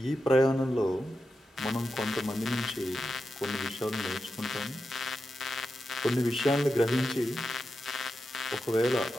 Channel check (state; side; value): normal; both; correlation 0.89